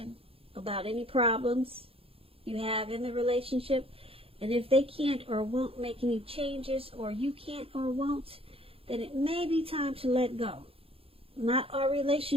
about any problems you have in the relationship. And if they can't or won't make any changes, or you can't or won't, then it may be time to let go. Not all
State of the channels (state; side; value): late; left; 0.27 ms